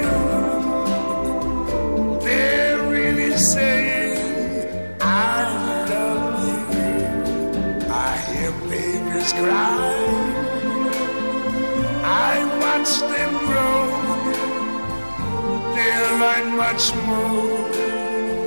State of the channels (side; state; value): both; inverted; correlation -1.00